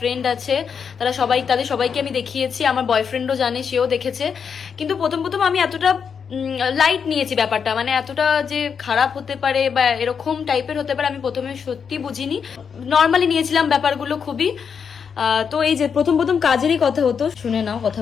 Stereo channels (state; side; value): quieter; right; 6.6 dB